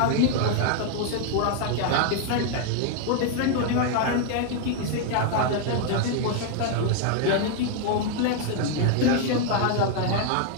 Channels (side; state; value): both; different; correlation 0.00